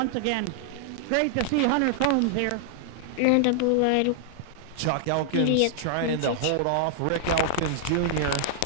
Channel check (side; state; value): both; different; correlation 0.00